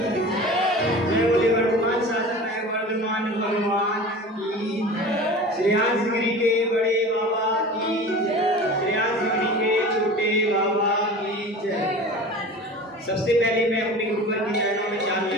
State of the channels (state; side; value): normal; both; correlation 0.37